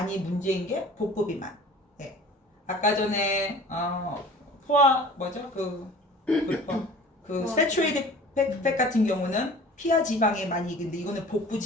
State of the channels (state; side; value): normal; both; correlation 0.44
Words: 문제인 게 복부 비만. 네. 아까 전에 포화 뭐죠? 그 세츄레이드 팩 같은 경우는 피하 지방에 많이 이긴데 이거는 복부